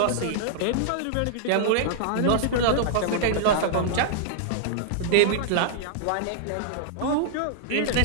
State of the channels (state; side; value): different; both; correlation -0.01